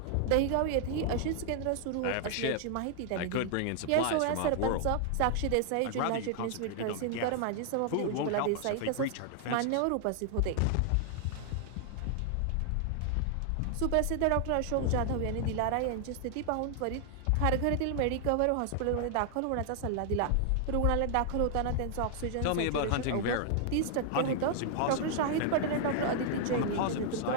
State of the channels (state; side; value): different; both; correlation 0.00